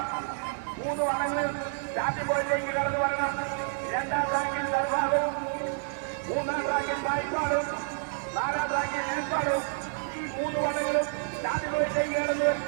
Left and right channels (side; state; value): left; silent; digital silence